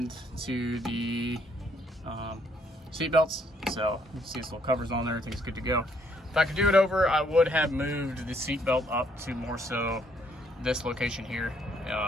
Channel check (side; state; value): both; normal; correlation 0.68